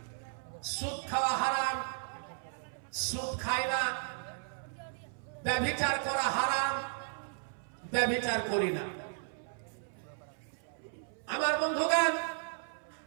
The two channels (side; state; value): left; silent; 55 dB below the other